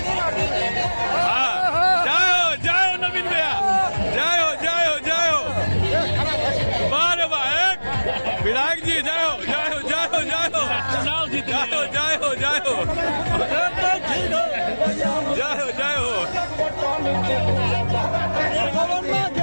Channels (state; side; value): inverted; both; correlation -1.00